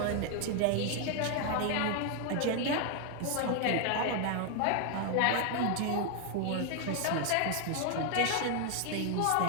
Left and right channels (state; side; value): different; both; correlation 0.01